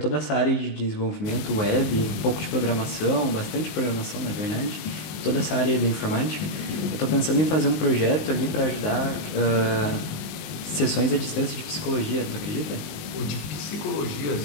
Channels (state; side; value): late; right; 19 ms